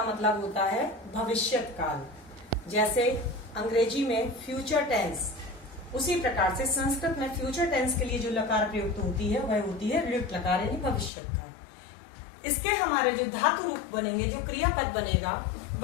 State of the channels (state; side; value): drops out; right; at 11.1 s